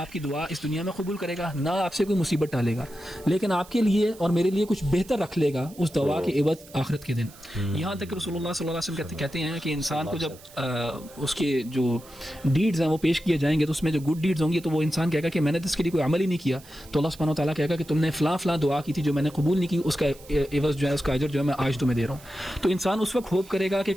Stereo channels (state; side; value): noise; right; hiss, 22 dB below the sound